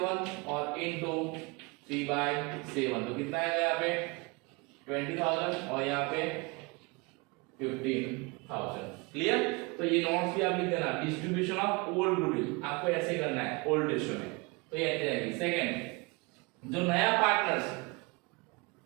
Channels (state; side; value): quieter; left; 27.8 dB